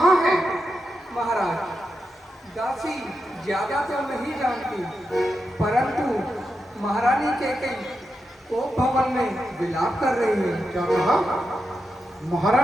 है? महाराज दासी ज्यादा तो नहीं जानती, परंतु महारानी कैकई कोप भवन में विलाप कर रही है। क्या कहा?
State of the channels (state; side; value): normal; both; correlation 0.87